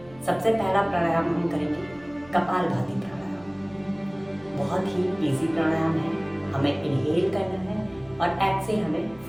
सबसे पहला प्राणायाम हम करेंगे कपालभाति प्राणायाम। बहुत ही इजी प्राणायाम है। हमें इनहेल करना है और एक्सेल हमें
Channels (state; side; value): noise; right; hum, 24 dB below the sound